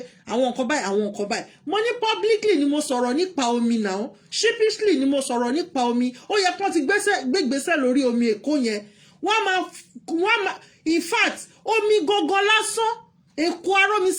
àwọn nǹkan báyìí mo ní publicly ni mo sọ̀rọ̀ nípa omi náà sheepishly ni mo sọ̀rọ̀ nípa omi ó yẹ kán ti gbégbèsè lórí omi Èkó yẹn wọ́n máa in fact omi gógó lásán Èkó arómi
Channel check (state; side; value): identical; both; correlation 1.00